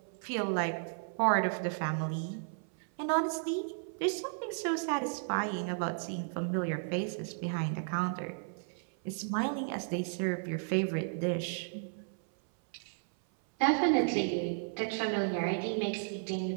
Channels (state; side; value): silent; left; 55 dB below the other